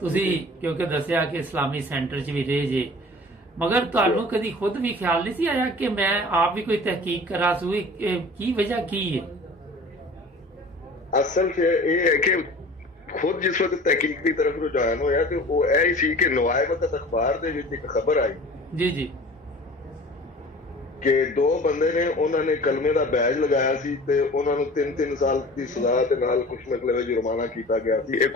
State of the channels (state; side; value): normal; both; correlation 0.43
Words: ਤੁਸੀਂ ਕਿਉਂਕਿ ਦੱਸਿਆ ਕਿ ਇਸਲਾਮੀ ਸੈਂਟਰ 'ਚ ਵੀ ਰਹੇ ਜੇ, ਮਗਰ ਤੁਹਾਨੂੰ ਕਦੀ ਖੁਦ ਵੀ ਖਿਆਲ ਨਹੀਂ ਸੀ ਆਇਆ ਕਿ ਮੈਂ ਆਪ ਵੀ ਕੋਈ ਤਹਿਕੀਕ ਕਰਾਂ ਸੂ? ਕੀ ਵਜ੍ਹਾ ਕੀ ਹੈ? ਅਸਲ 'ਚ ਇਹ ਹੈ ਕਿ ਖੁਦ ਜਿਸ ਵਕਤ ਤਹਿਕੀਕ ਦੀ ਤਰਫ ਰੁਝਾਨ ਹੋਇਆ ਤੇ ਉਹ ਇਹ ਹੀ ਸੀ ਕਿ ਨਵਾਏ ਵਕਤ ਅਖਬਾਰ ਦੇ ਵਿੱਚ ਇੱਕ ਖਬਰ ਆਈ ਜੀ ਜੀ ਕਿ 2 ਬੰਦੇ ਨੇ, ਉਹਨਾਂ ਨੇ ਕਲਮੇ ਦਾ ਬੈਜ ਲਗਾਇਆ ਸੀ ਤੇ ਉਹਨਾਂ ਨੂੰ 3-3 ਸਾਲ ਦੀ ਸਜ਼ਾ ਤੇ ਨਾਲ ਕੁਝ ਮਤਲਬ ਜੁਰਮਾਨਾ ਕੀਤਾ ਗਿਆ ਸੀ। ਇਹ